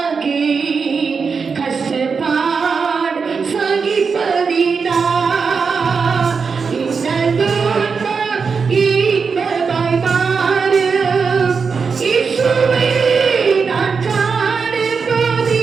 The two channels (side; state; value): left; quieter; 5.4 dB